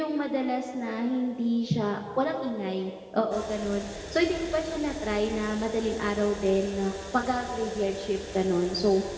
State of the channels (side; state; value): both; identical; correlation 1.00